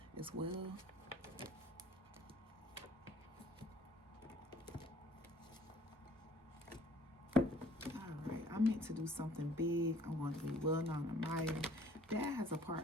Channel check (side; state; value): both; normal; correlation 0.56